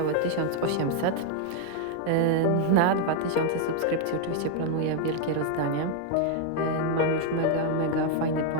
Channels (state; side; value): different; both; correlation 0.00